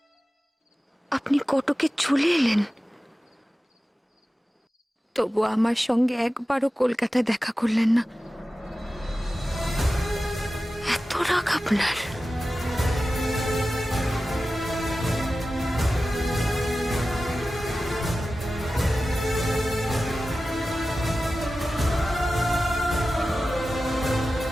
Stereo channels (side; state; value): both; normal; correlation 0.94